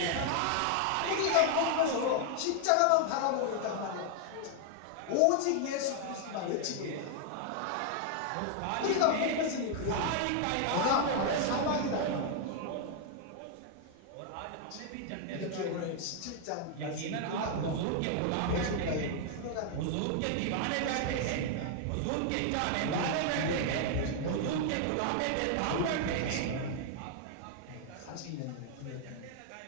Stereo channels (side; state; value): both; different; correlation 0.00